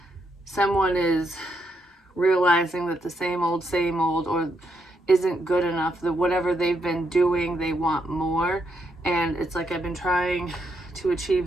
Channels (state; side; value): normal; both; correlation 0.78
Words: someone is realizing that the same old or isn't good enough, that whatever they've been doing, they want more. And it's like, I've been trying to achieve